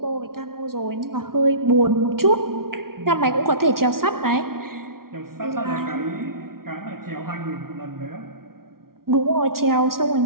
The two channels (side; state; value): left; late; 0.93 ms